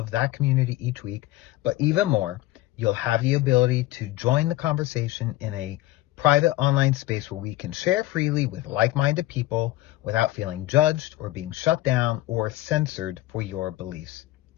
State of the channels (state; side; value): quieter; right; 16.6 dB